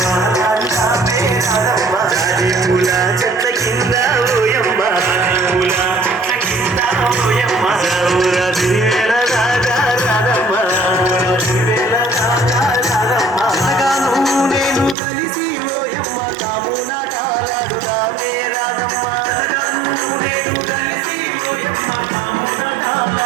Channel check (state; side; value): drops out; left; at 15.0 s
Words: చాలాడు రావే రాదమ్మ జాజి పూల చెట్ల కింద పోయమ్మ జాజి పూల చెట్ల కింద పోయమ్మ ఊర దివేల దాకా రాదమ్మ ఊర దివేల దాకా రాదమ్మ సగాను నేను కలిసి పోయమ్మ కాము నాటాలాడు రావే రాదమ్మ